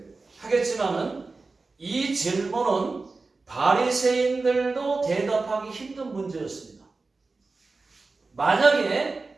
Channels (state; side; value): quieter; left; 3.8 dB